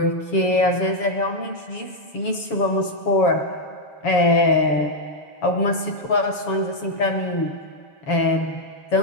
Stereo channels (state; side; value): late; right; 7.1 ms